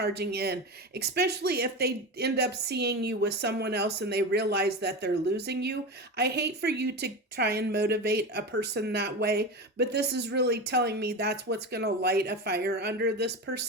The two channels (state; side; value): normal; both; correlation 0.23